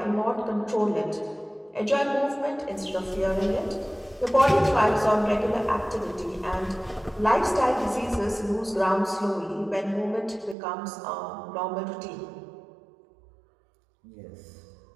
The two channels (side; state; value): left; drops out; at 10.6 s